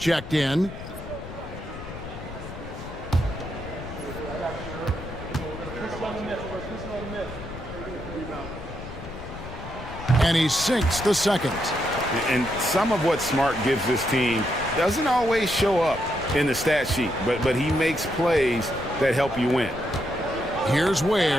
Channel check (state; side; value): noise; left; rumble, 12 dB below the sound